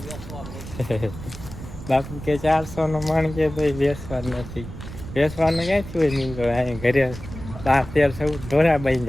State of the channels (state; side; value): noise; right; rumble, 12 dB below the sound